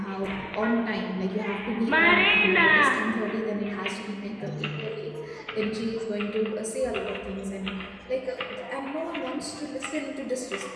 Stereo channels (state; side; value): identical; both; correlation 1.00